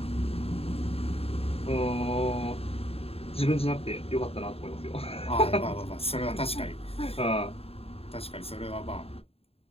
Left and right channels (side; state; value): right; late; 0.28 ms